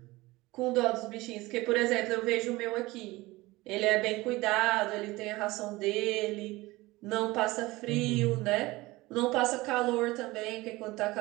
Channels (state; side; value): quieter; left; 20.4 dB